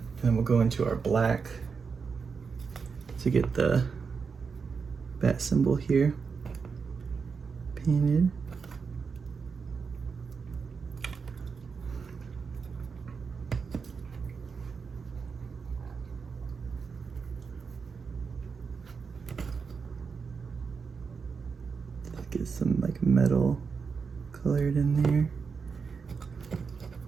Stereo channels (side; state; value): left; quieter; 5.5 dB